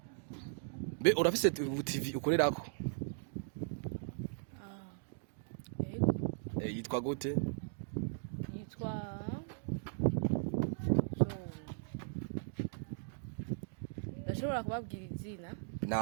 be urafise TV ukorerako? Yitwa gute? Yitwa ndashobora kubabwira izina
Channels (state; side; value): silent; left; digital silence